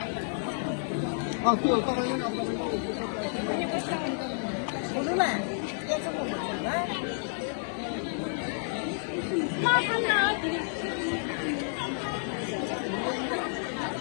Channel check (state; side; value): silent; right; digital silence